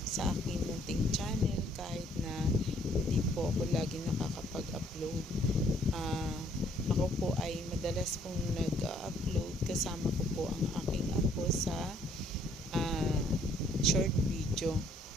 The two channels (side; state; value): both; normal; correlation 0.64